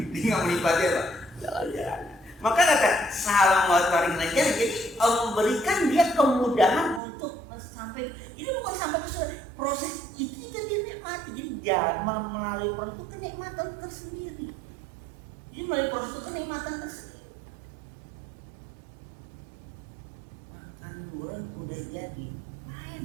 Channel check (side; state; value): left; drops out; at 7.0 s